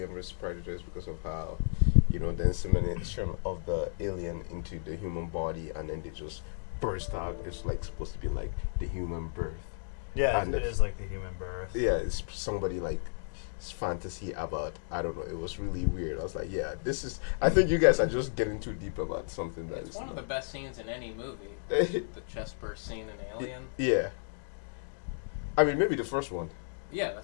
versus predators because of how, the insemination of the alien into the human body and then they just burst out. It's like supposed to be like the human birth. Yeah, And it is like the human birth. Yeah, it's somebody like fantasy about, I don't know, it was really weird. I was like, yeah, I think you guys are just getting too deep about something that it's is one of the best scenes in any movie. The chest burst scene in Alien. Yeah. I mean, maybe the first one. Yeah,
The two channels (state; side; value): silent; right; digital silence